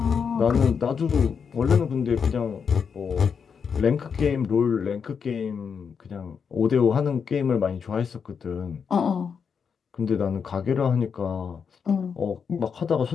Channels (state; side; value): quieter; right; 6.4 dB